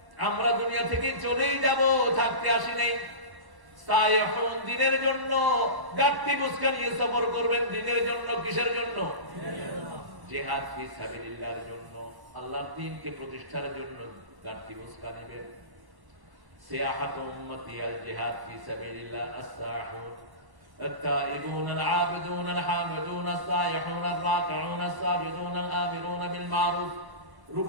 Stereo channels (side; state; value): left; late; 1.1 ms